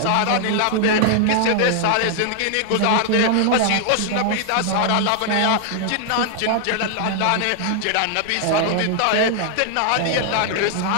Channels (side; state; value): both; different; correlation 0.00